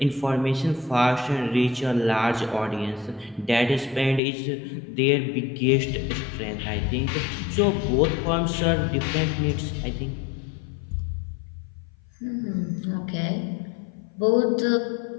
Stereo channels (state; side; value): drops out; right; at 4.2 s